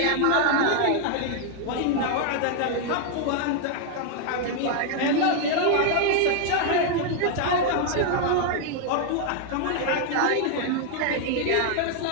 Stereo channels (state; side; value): different; both; correlation 0.00